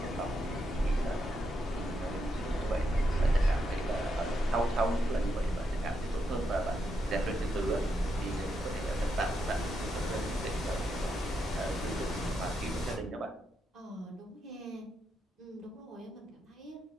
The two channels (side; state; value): both; normal; correlation 0.82